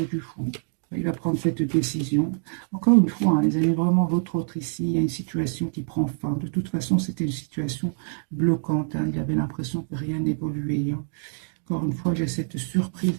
du fou. Il va prendre cette décision. Encore une fois, hein, les amis, vraiment, votre autre ici, il y a une situation qui prend fin. De toute façon, c'était une situation bloquante, hein. Il avait l'impression que rien n'évoluait, hein. Encore une fois, j'ai cette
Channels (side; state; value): left; silent; 61 dB below the other